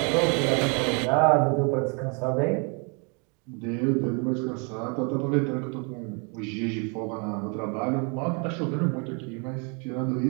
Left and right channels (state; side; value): quieter; left; 35.0 dB